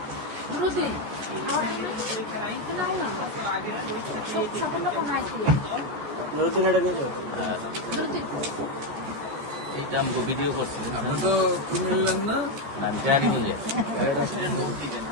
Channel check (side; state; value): left; late; 14 ms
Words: এইটা আমি ভিডিও করছি। আপনি তো কুমিল্লার না? আমি কারিগঞ্জে।